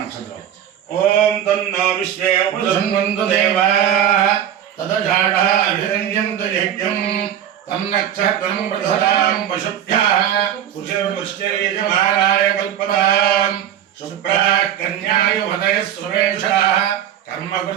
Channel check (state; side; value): quieter; left; 10.3 dB